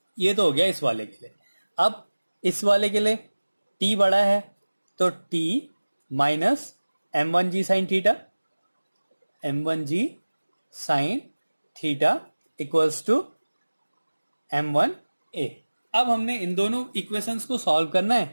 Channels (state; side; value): inverted; both; correlation -1.00